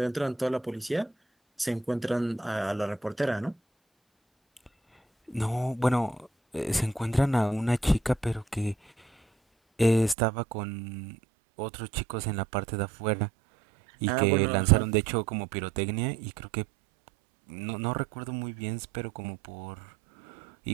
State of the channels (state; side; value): drops out; left; at 10.2 s